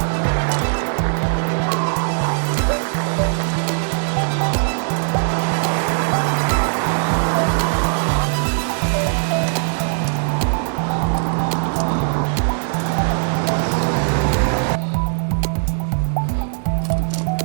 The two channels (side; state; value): left; silent; 66 dB below the other